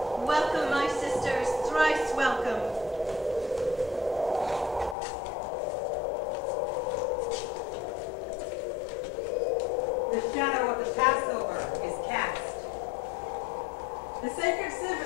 Welcome, my sisters, thrice welcome. The shadow of the Passover is cast. The sacred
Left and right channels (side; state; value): right; drops out; at 5.0 s